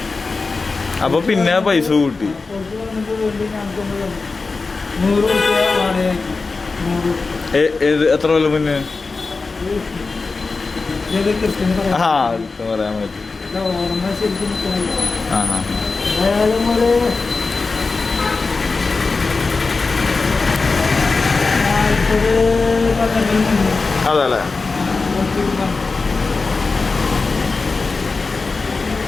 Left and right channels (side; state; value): right; quieter; 4.1 dB